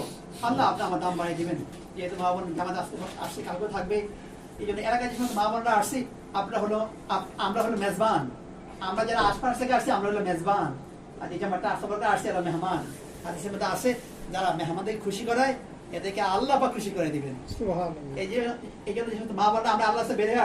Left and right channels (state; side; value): identical; both; correlation 1.00